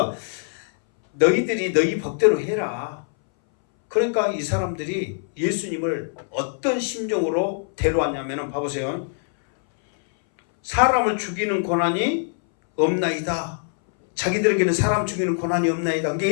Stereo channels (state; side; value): silent; right; 61 dB below the other